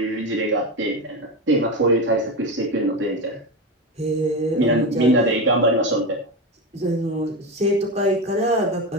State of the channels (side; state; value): both; normal; correlation 0.17